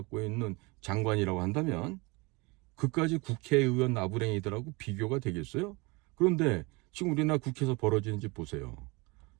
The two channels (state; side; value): quieter; left; 26.3 dB